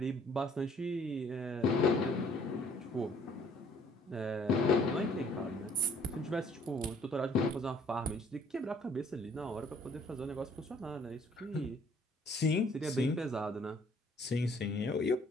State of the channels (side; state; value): both; normal; correlation 0.59